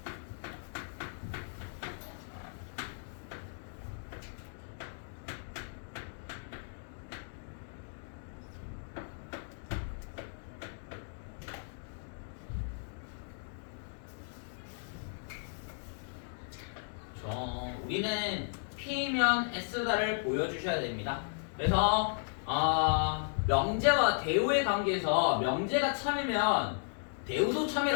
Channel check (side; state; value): right; silent; digital silence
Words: 우리는 P면 S다를 보여주셔야 됩니다. 그래서 명제와 대우의 관계에서 명제가 참이면 대우도